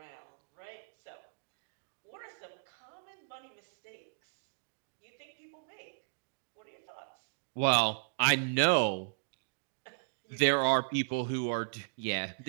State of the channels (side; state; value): left; silent; digital silence